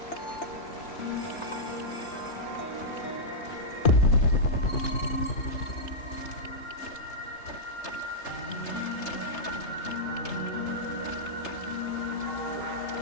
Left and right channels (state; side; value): late; right; 3.3 ms